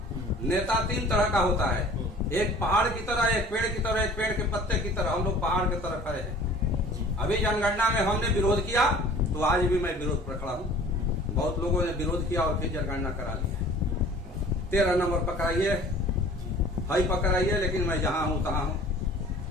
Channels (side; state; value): both; normal; correlation 0.47